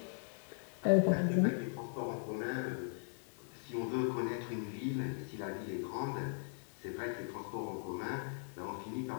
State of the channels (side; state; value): right; silent; digital silence